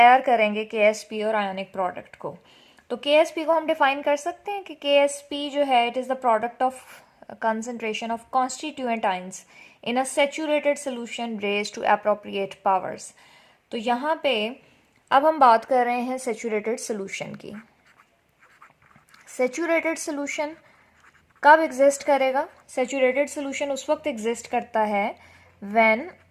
करेंगे KSP और आयोनिक प्रोडक्ट को. तो KSP को हम डिफाइन कर सकते हैं कि KSP जो है it is the product of concentration of constituent ions in a saturated solution raised to appropriate powers. तो यहाँ पे अब हम बात कर रहे हैं सैचुरेटेड सोल्यूशन की. सैचुरेटेड सोल्यूशन कब एग्जिस्ट करेगा? सैचुरेटेड सोल्यूशन उस वक्त एग्जिस्ट करता है when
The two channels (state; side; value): identical; both; correlation 1.00